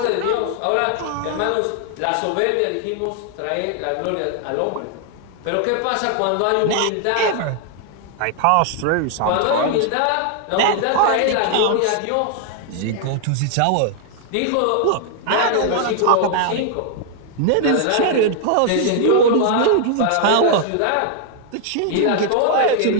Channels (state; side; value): different; both; correlation 0.00